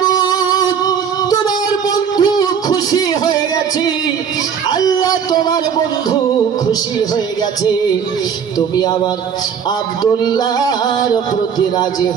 তোমার বন্ধু খুশি হয়ে গেছে, আল্লাহ তোমার বন্ধু খুশি হয়ে গেছে, তুমি আমার আব্দুল্লাহর প্রতি রাজি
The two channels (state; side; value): quieter; left; 7.3 dB